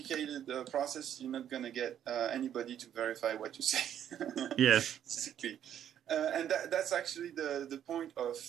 process, you're not going to get anybody to verify what you say. Yes. Basically. And that's actually the point of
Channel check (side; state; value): left; quieter; 10.0 dB